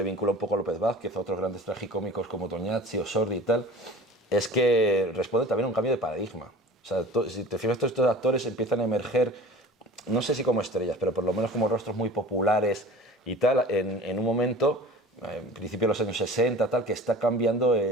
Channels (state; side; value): normal; both; correlation 0.41